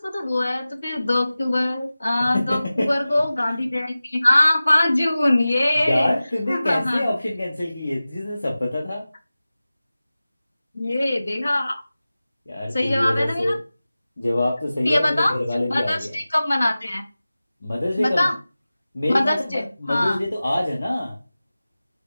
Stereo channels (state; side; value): inverted; both; correlation -0.96